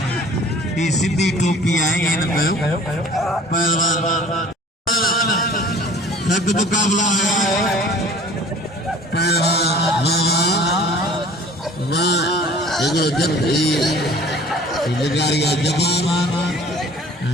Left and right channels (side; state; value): both; normal; correlation 0.49